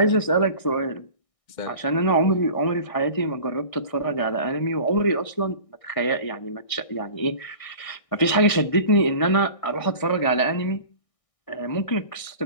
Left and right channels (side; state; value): right; late; 1.6 ms